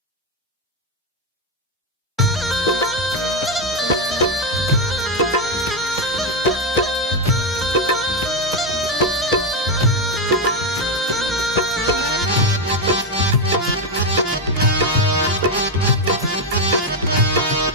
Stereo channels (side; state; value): both; normal; correlation 0.06